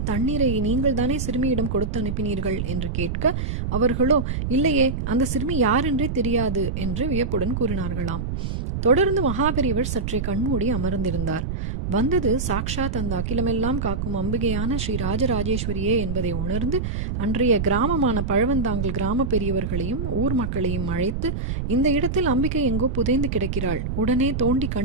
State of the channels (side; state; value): right; noise; rumble, 2 dB below the sound